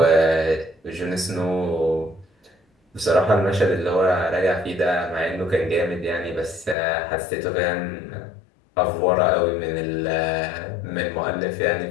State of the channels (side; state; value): right; drops out; at 6.8 s